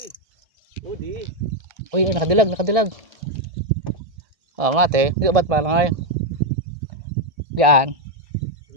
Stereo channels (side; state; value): left; late; 1.6 ms